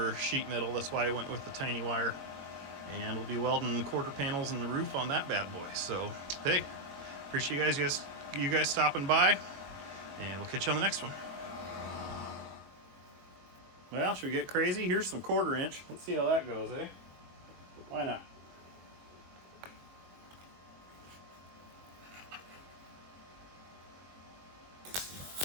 sheet metal. That's why I went with the tiny wire, and we'll be welding quarter panels in the roof on that bad boy. So hey, appreciate you guys stopping by, and we'll catch you on the next one. Well, should we get crazy? Here's some 1/4 inch. Let's see how that goes, eh? Why not?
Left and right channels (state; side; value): late; left; 21 ms